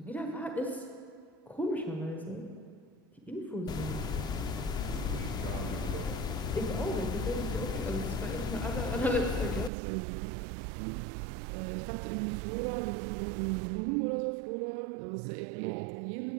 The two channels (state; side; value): drops out; left; at 9.7 s